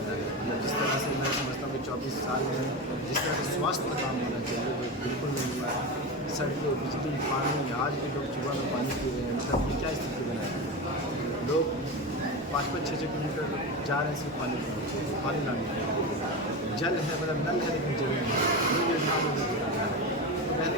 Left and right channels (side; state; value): both; normal; correlation 0.21